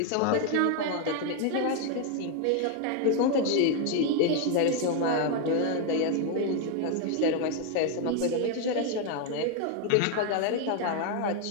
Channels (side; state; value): both; different; correlation 0.01